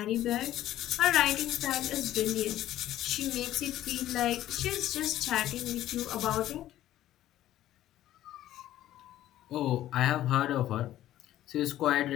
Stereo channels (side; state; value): right; quieter; 13.4 dB